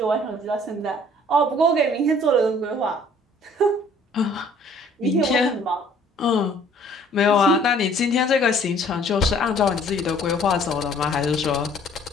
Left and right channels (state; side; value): normal; both; correlation 0.56